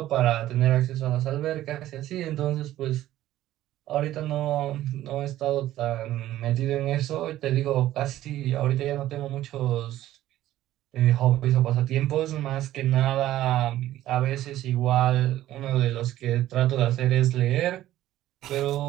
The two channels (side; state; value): left; quieter; 14.0 dB